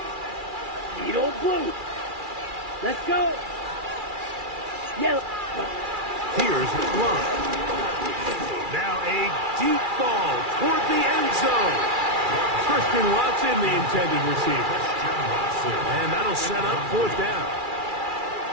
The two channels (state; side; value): late; left; 2.4 ms